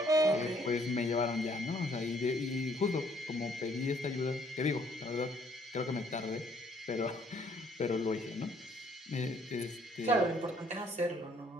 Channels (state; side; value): normal; both; correlation 0.64